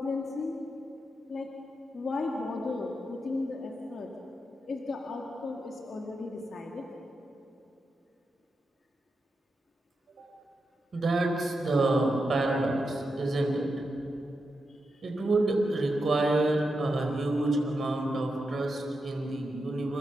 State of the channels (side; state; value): both; normal; correlation 0.87